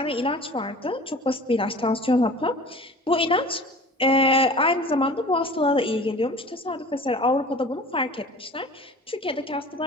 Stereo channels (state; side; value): normal; both; correlation 0.42